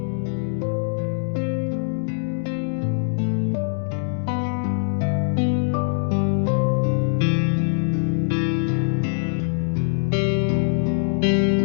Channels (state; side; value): silent; right; digital silence